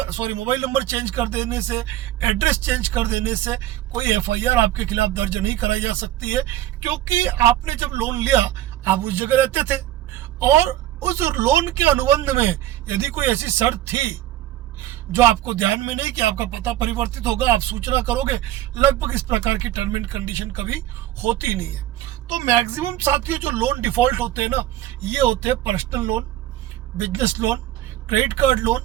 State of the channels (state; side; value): quieter; left; 13.6 dB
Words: चेंज कर देने से, एड्रेस चेंज कर देने से कोई एफआईआर आपके खिलाफ दर्ज नहीं कराई जा सकती है, क्योंकि आपने जब लोन लिया आप उस जगह रहते थे, और उस लोन के अनुबंध में यदि कोई ऐसी शर्त थी जो आपको ध्यान में नहीं कि आपका पता परिवर्तित होगा, आप सूचना करोगे, लगभग इस प्रकार की टर्म एंड कंडीशन कभी होती नहीं है। तो मैक्सिमम साथियों जो लोन डिफॉल्ट होते हैं ना, ये होते हैं personal loan, business loan, credit card